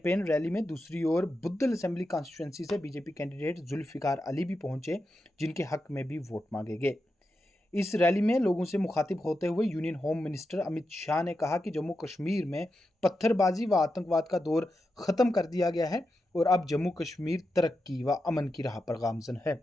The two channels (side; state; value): both; normal; correlation 0.88